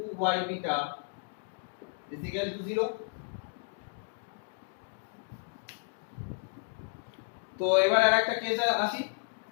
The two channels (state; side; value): silent; right; digital silence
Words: beta is equal to 0। তো এবার আরেকটা কেসে আসি,